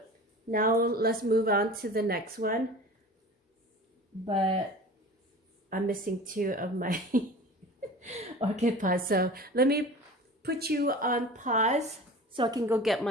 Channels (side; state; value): both; normal; correlation 0.38